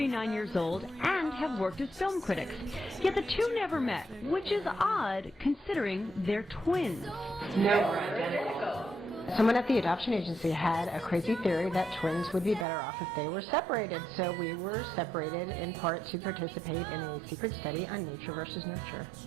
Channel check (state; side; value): drops out; left; at 12.7 s